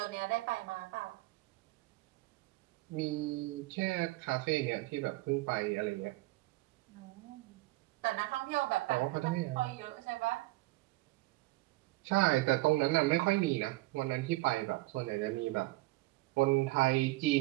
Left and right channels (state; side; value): quieter; left; 20.7 dB